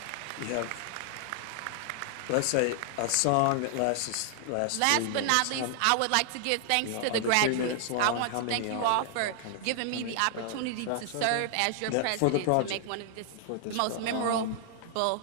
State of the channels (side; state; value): both; different; correlation -0.01